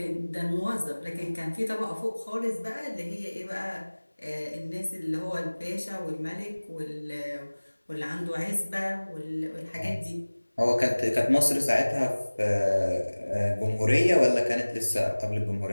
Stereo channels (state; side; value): inverted; both; correlation -1.00